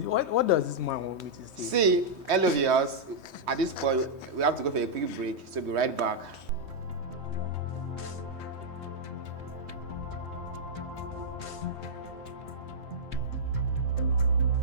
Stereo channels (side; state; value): left; late; 3.2 ms